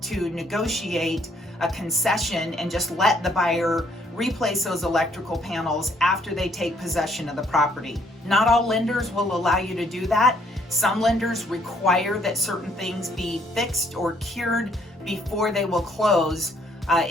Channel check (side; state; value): both; normal; correlation 0.66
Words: to negotiate a concession and just let the buyer replace those electrical panels after they take possession of the property. Not all lenders will allow you to do that. Some lenders require that certain things be fixed or cured before they will close.